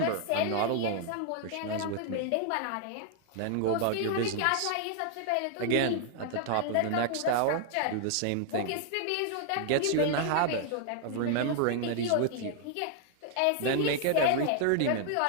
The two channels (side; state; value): both; different; correlation 0.00